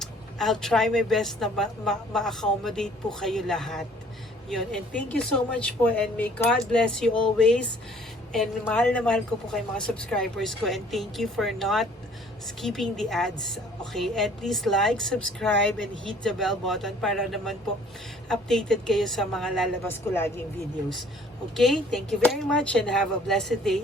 I'll try my best na ma-accommodate po kayo lahat. Yun. And thank you so much po, and may God bless you always. And mahal na mahal ko po kayo mga subscribers ko, and thank you for not skipping the ads. Okay? And please like, subscribe, and hit the bell button para naman po updated kayo sa mga lalabas ko laging videos. Okay? Thank you very much and have a blessed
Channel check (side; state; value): both; normal; correlation 0.56